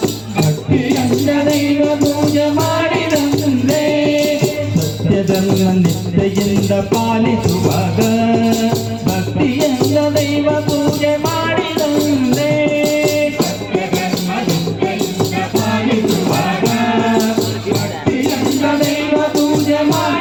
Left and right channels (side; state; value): left; noise; hum, 28 dB below the sound